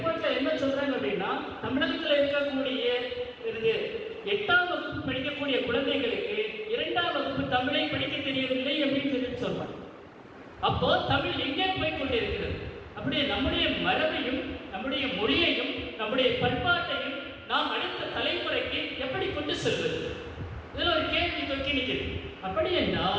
என்ன சொல்றாங்க அப்படின்னா, தமிழகத்தில் இருக்கக்கூடிய 8ஆம் வகுப்பு படிக்கக்கூடிய குழந்தைகளுக்கு 2ஆம் வகுப்பு தமிழை படிக்க தெரியவில்லை அப்படின்னு சொல்லிட்டு சொல்றாங்க. அப்போ தமிழ் எங்கே போய் கொண்டிருக்கிறது? அப்படியே நம்முடைய மரபையும் நம்முடைய மொழியையும் நம்முடைய பண்பாட்டையும் நாம் அடுத்த தலைமுறைக்கு எப்படி கொண்டு செல்வது? இதில் ஒரு கேள்வி தொக்கி நிற்கிறது. அப்படி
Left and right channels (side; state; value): both; identical; correlation 1.00